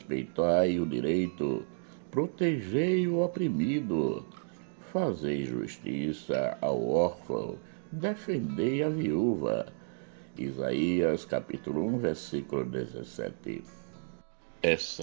o direito, protegei o oprimido, fazei justiça ao órfão, defendei a viúva. Isaías capítulo 1, versículo 17.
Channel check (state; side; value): silent; left; digital silence